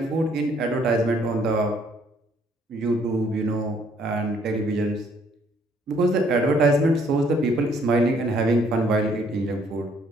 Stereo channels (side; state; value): both; normal; correlation 0.65